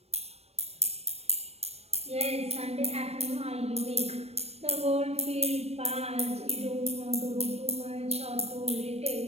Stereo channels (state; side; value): late; left; 0.30 ms